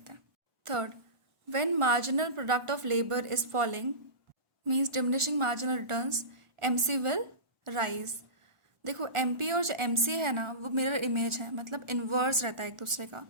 हैं. Third, when marginal product of labour is falling means diminishing marginal returns, MC will rise. देखो एमपी और जो एमसी है ना वो मिरर इमेज है, मतलब इन्वर्स रहता है एक दूसरे का.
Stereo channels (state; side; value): late; left; 1.4 ms